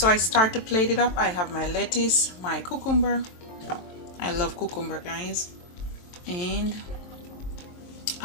I start to plate it up. I have my lettuce, my cucumber. I love cucumber guys. And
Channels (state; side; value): late; right; 23 ms